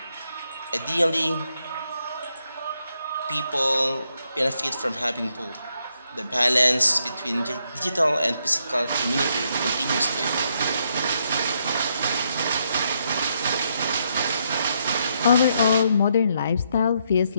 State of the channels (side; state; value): both; inverted; correlation -0.77